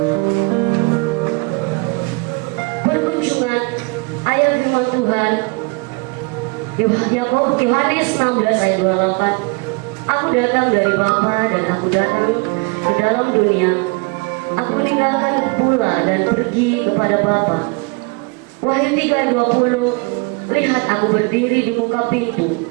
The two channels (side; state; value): left; quieter; 30.2 dB